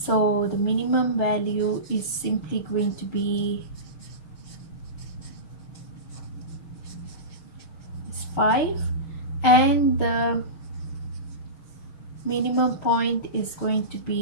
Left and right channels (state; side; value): late; right; 6.5 ms